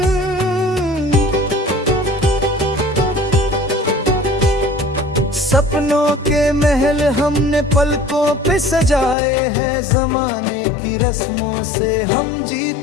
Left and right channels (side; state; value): right; drops out; at 9.2 s